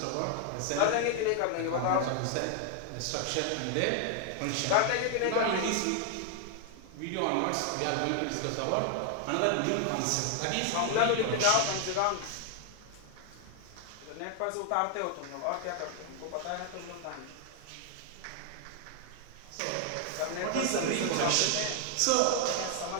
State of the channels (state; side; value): different; both; correlation 0.00